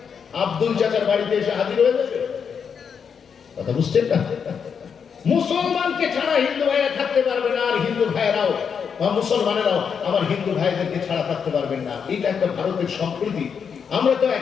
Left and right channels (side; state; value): right; quieter; 6.7 dB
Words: আব্দুল চাচার বাড়িতে এসে হাজির হয়ে যাবে। কথা বুঝছেন না? মুসলমানকে ছাড়া হিন্দু ভাইরা থাকতে পারবে না, আর হিন্দু ভাইরাও বা মুসলমানেরাও আমার হিন্দু ভাইদেরকে ছাড়া থাকতে পারবেন না। এটা একটা ভারতের সম্প্রীতি। আমরা তো